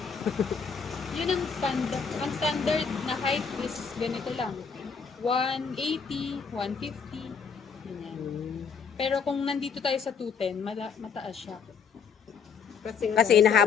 Yun ang standard. Ang standard na height is ganito lang. 180, 150. Ganyan. Pero kung nandito tayo sa 210, mataas siya. Kasi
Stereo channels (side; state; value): right; quieter; 6.1 dB